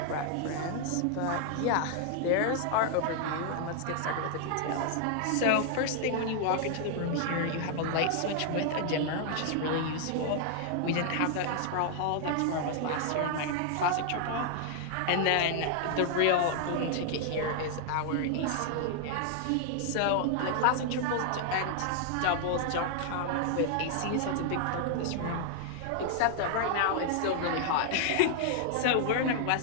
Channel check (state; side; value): different; both; correlation 0.00